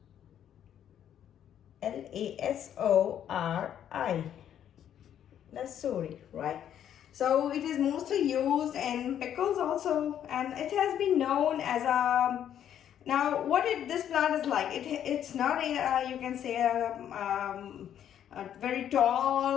Lasori, lasori, right? So it is mostly used in pickles also, and it has been known as a. Now, this plant is like, it's not a, you can say a very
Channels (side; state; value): right; quieter; 10.0 dB